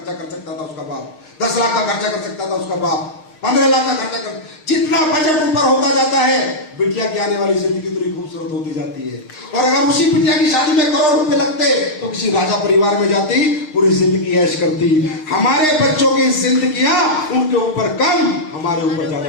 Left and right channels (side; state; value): right; late; 6.6 ms